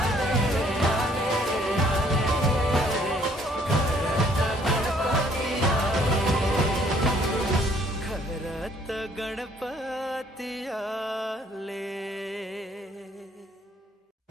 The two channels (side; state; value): both; normal; correlation 0.62